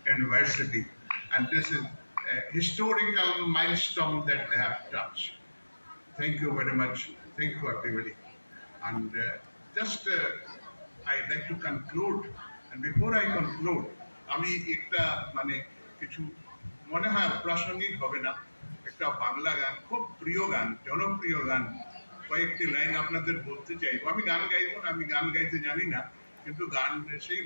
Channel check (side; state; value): both; inverted; correlation -1.00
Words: university, and this is a historical milestone that they have touched. Thank you very much. Thank you, everybody. And I'd like to conclude. And before I conclude, আমি একটা কিছু মনে হয় প্রাসঙ্গিক হবে না, একটা বাংলা গান, খুব প্রিয় গান, জনপ্রিয় গান, কয়েকটি লাইন আপনাদের বলতে চাইবো। আমি গান গাইবো না, আমি গান গাইতে জানি না, কিন্তু সেই